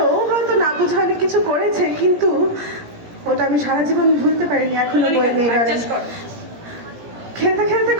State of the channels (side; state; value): left; late; 17 ms